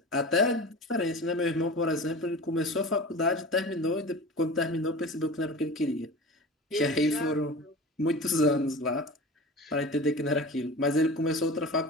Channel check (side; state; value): both; normal; correlation 0.34